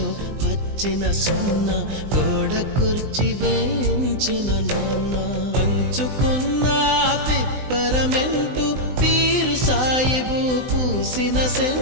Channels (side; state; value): left; late; 20 ms